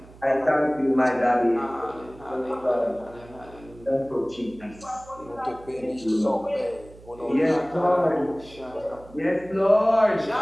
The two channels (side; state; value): right; noise; hum, 22 dB below the sound